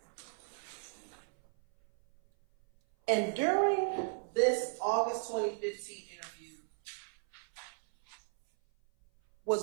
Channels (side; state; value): left; silent; 54 dB below the other